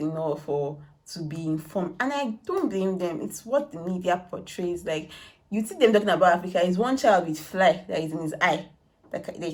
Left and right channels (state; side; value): identical; both; correlation 1.00